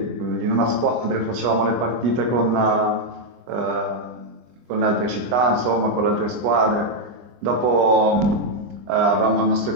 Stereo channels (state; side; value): late; left; 24 ms